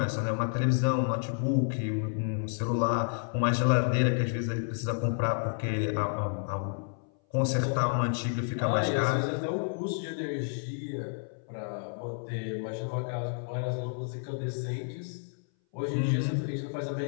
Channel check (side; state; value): right; silent; 58 dB below the other